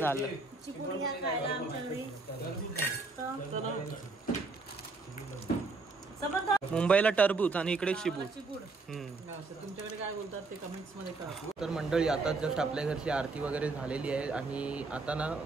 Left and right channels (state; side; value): quieter; left; 3.8 dB